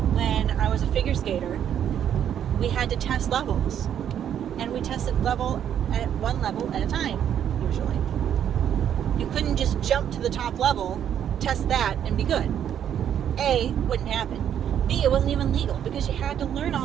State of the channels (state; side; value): quieter; left; 9.5 dB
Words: When I was a figure skater, we had to test levels, and we tested one level at a time, usually. You couldn't just jump to the top level, test that, and be good. A, wouldn't happen. B, it wasn't even legal because you had to learn